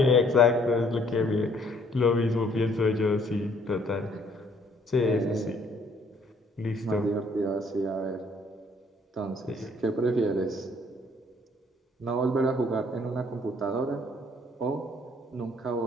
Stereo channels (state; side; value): normal; both; correlation 0.63